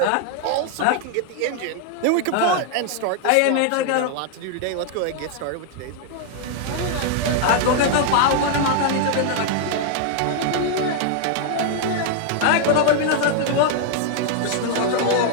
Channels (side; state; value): both; different; correlation 0.00